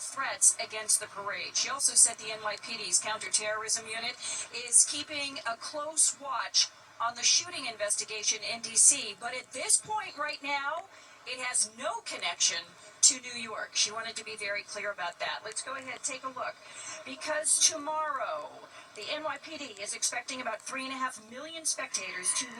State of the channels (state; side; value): identical; both; correlation 1.00